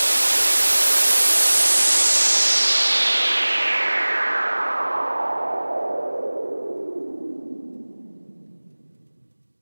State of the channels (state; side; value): inverted; both; correlation -1.00